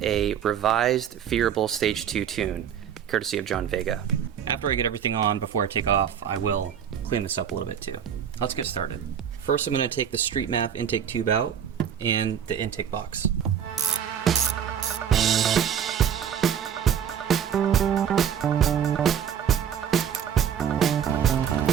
a revised Phearable Stage 2 tune, courtesy of John Vega. After I get everything on, before I take off, I will clean this up a little bit too. Let's get started. First, I'm going to take the Street MAF intake tube out and the intake box.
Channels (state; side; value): quieter; left; 8.6 dB